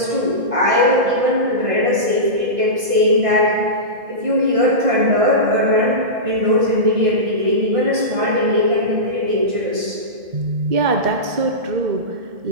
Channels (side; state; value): left; late; 1.5 ms